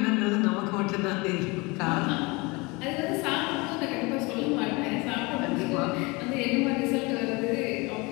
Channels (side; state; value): right; quieter; 25.8 dB